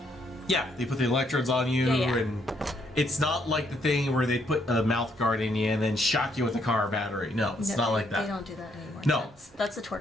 Yeah, they put the electrodes on you, Yeah. and it's not like the thing where they put a mouth guard in you and then shock you with a car battery. No, it's No, not like They that. don't do that anymore. No. That's a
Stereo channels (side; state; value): both; normal; correlation 0.72